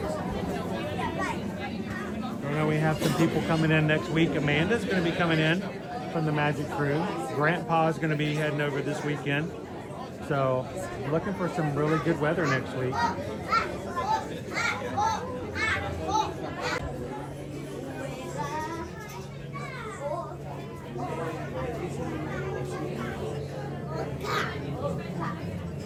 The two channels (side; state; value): both; identical; correlation 1.00